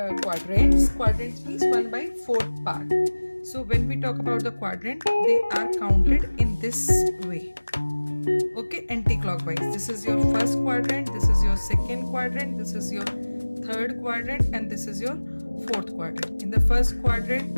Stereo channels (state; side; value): inverted; both; correlation -1.00